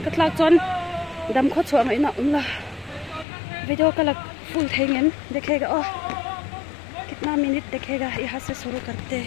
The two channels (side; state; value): right; drops out; at 3.2 s